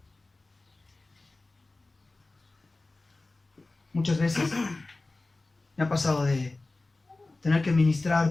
Muchas veces me ha pasado de tener que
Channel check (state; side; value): quieter; right; 3.2 dB